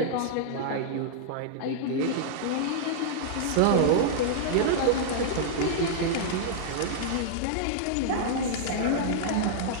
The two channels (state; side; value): different; both; correlation -0.01